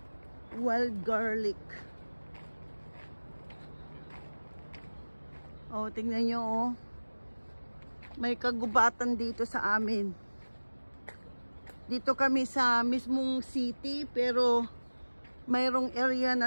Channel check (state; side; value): inverted; both; correlation -1.00